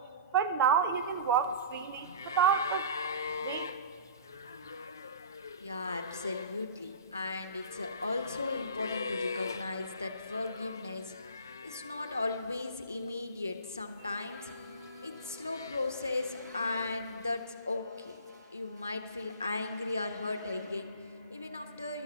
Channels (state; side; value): inverted; both; correlation -0.38